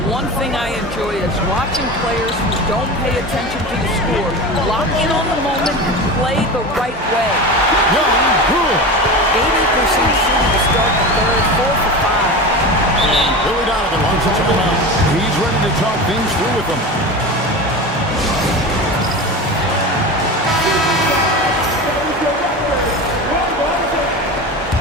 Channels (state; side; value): normal; both; correlation 0.27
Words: One thing I enjoy is watching players who don't pay attention to the score lock in on the moment and play the right way. Young, good. 80% shooting to start the third, 4 for 5. And Billy Donovan wants a timeout. He's ready to talk things through with them.